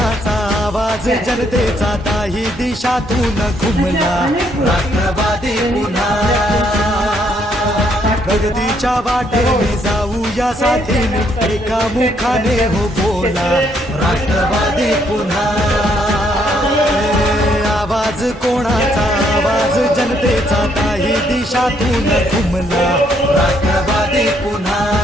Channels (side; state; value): both; normal; correlation 0.71